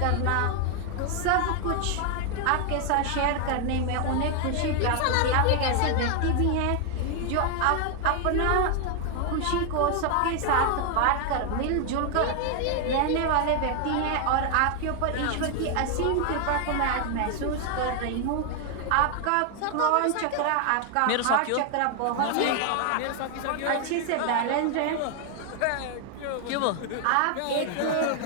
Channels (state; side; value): different; both; correlation 0.00